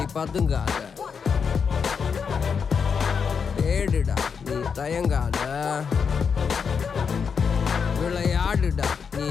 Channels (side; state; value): right; quieter; 6.2 dB